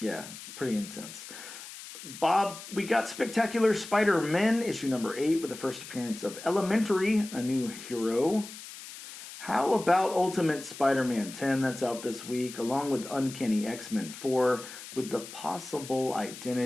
Yeah, pretty intense. Bob, we got Spectacular Spider-Man, issue #8, with the first appearance of Elementary, a new hero. How about Ultimate Spider-Man 10, that's out this week, along with Uncanny X-Men 4, with the possible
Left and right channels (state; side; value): noise; left; hiss, 13 dB below the sound